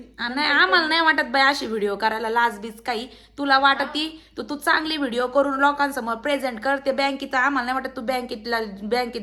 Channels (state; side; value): identical; both; correlation 1.00